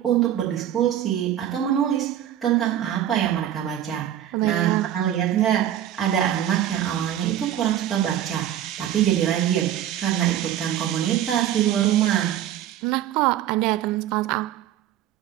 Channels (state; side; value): quieter; left; 11.2 dB